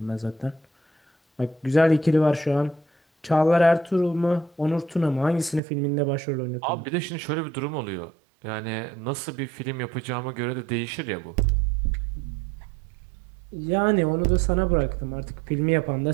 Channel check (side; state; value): left; drops out; at 5.6 s